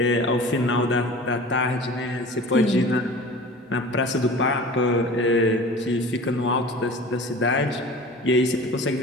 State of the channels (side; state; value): both; normal; correlation 0.40